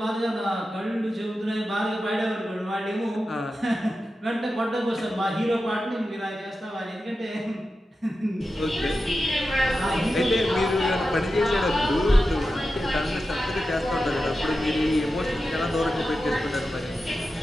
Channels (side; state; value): both; normal; correlation 0.91